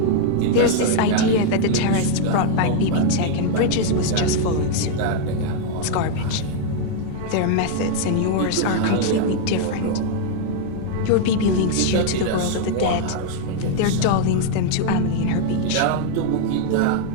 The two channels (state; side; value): different; both; correlation 0.00